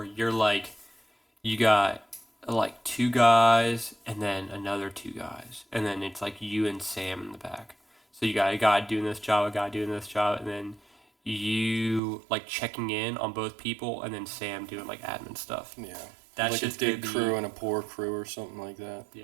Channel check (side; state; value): left; drops out; at 12.0 s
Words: you're like, you got like 2 guys and then another 2 guys, and then it's like you and Sam in the back. So you got a guy doing this job, a guy doing this job, and then you like checking in on both people, and then Sam doing like admin stuff. Yeah. That's like just a big gonna crew and a poor crew or something like that.